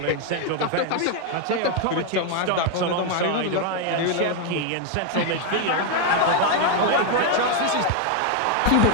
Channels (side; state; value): both; different; correlation 0.01